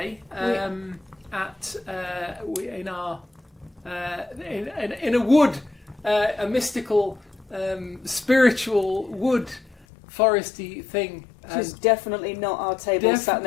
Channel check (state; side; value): drops out; right; at 9.9 s